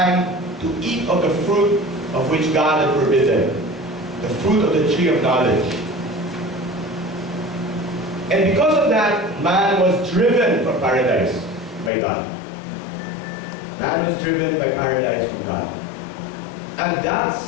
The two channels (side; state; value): right; drops out; at 11.9 s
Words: to eat of the fruit of which God had forbidden, the fruit of the tree of knowledge. And because of that, man was driven from paradise by God. Man was driven by paradise from God. And that